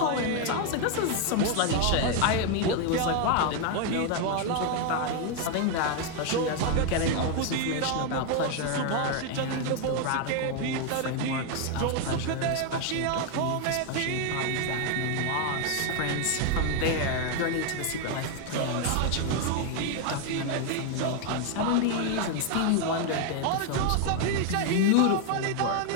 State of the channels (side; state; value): both; different; correlation 0.01